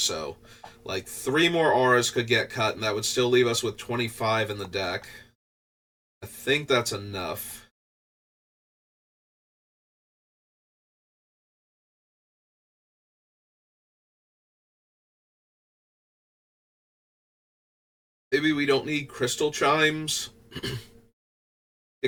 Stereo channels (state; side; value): identical; both; correlation 1.00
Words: so like 3 more auras could get cut, and that would still leave us with 25 in the deck. I think that's enough. Maybe we don't need Crystal Chimes.